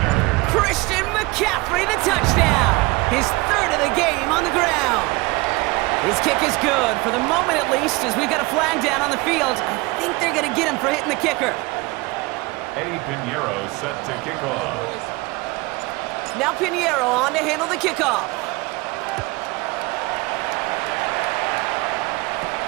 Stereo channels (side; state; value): left; quieter; 23.8 dB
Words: Christian McCaffrey, the touchdown. His third of the game on the ground. His kick is good, for the moment at least, as we've got a flag down on the field. I think they're going to get him for hitting the kicker. Eddie Pinheiro set to kick off. Now Pinheiro on to handle the kickoff.